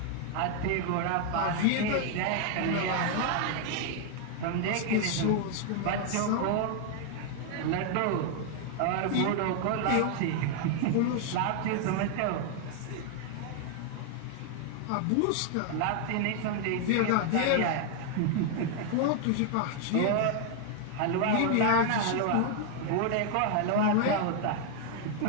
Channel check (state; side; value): different; both; correlation 0.00